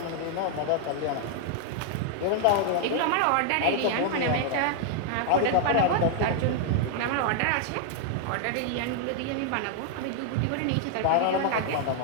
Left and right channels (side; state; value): both; different; correlation 0.00